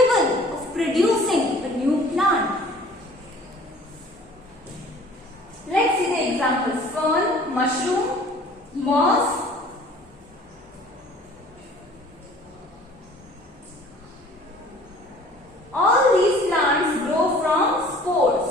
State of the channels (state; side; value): normal; both; correlation 0.50